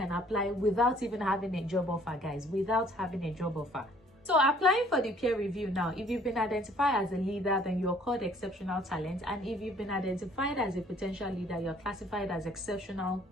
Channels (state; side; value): normal; both; correlation 0.58